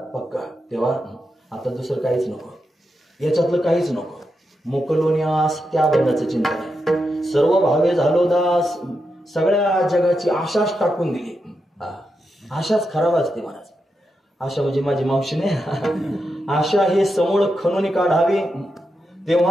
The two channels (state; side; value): normal; both; correlation 0.86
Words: पक्का. तेव्हा आता दुसरं काहीच नको, याच्यातलं काहीच नको. मोकलोन्यास त्या बनण्याचं चिंतन आहे. सर्व भावे झालो दास. सगळ्या जगाची आशाच टाकून दिली. आशाच खराब असते महाराज. आशा म्हणजे माझी मावशी नाही. आशा हे समूळ खणून काढावी